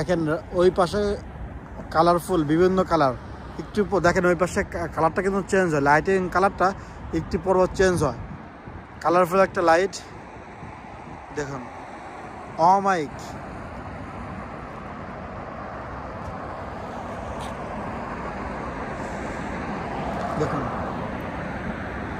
ওই পাশে কালারফুল বিভিন্ন কালার, একটু দেখেন ওই পাশে কালারটা কিন্তু চেঞ্জ হয়, লাইটিং কালারটা একটু পর চেঞ্জ হয়, কালারফুল একটা লাইট দেখুন। অমাইক দেখুন,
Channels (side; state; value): both; identical; correlation 1.00